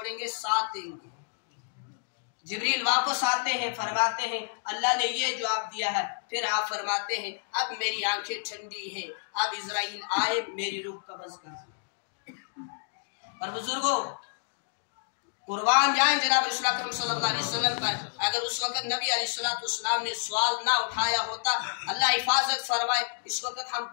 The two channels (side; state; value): right; silent; digital silence